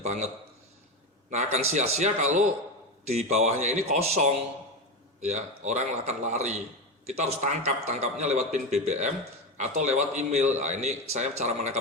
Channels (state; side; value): normal; both; correlation 0.17